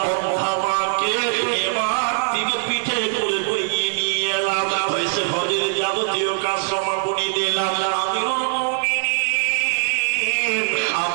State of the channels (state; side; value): silent; left; 65 dB below the other